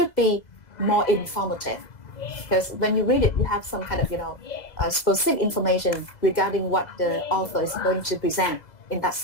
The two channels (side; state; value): right; late; 2.0 ms